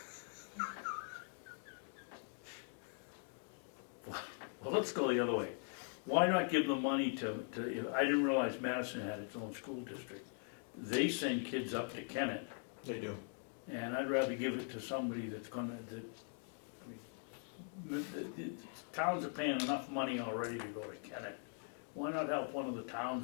Well, let's go the other way. Why not give the money to, I didn't realize Madison had its own school district. They send kids up to Kennett, They do. and I'd rather give it to somebody that's gonna, the towns are paying enough money already to go to Kennett. Why not help one of the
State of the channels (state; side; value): silent; right; 50 dB below the other